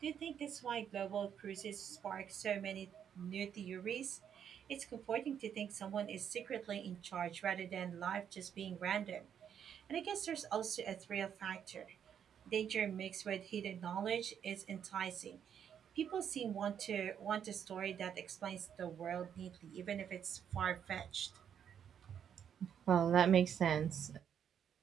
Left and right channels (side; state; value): left; quieter; 8.6 dB